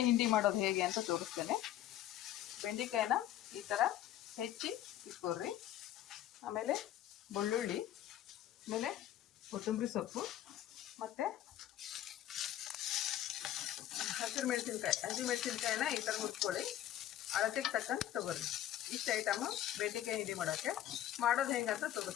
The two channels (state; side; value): quieter; right; 12.2 dB